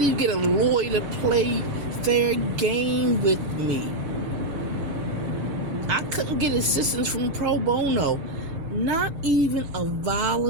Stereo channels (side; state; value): left; late; 7.6 ms